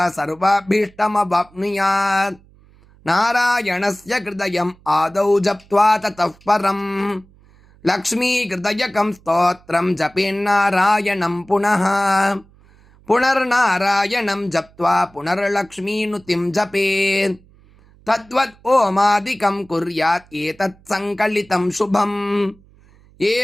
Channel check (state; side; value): noise; right; hum, 28 dB below the sound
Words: சர்வாபீஷ்டமவாப்னுயாத் நாராயணஸ்ய கிருதயம் ஆதௌ ஜப்த்வா ததः பரம் லக்ஷ்மீகிருதயகம் ஸ்தோத்திரம் ஜபேன்னாராயணம் புனः புனர்நாராயணம் ஜப்த்வா புனர்லக்ஷ்மீனுதிம் ஜபேத் தத்வத் ஓமாதிகம் குர்யாத் ஏதத் சங்கலிதம் சுபம்